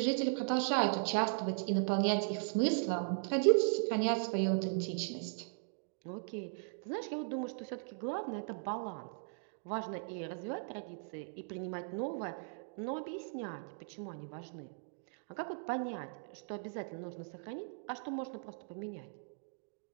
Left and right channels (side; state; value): left; silent; digital silence